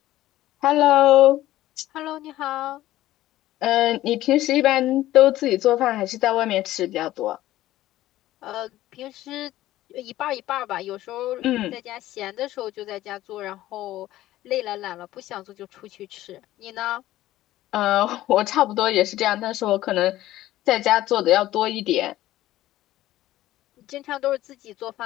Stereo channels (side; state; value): right; quieter; 15.0 dB